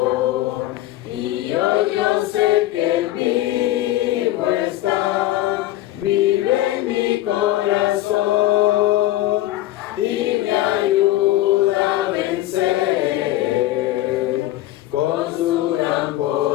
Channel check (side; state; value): right; quieter; 15.3 dB